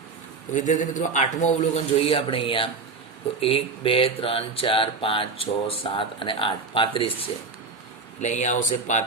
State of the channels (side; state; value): left; quieter; 4.3 dB